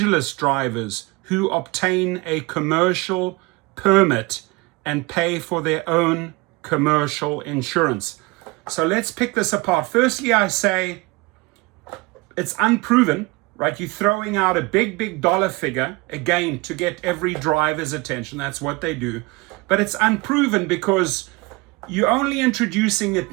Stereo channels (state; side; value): quieter; left; 24.3 dB